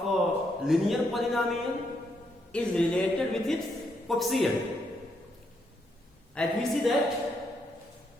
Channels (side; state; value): both; normal; correlation 0.77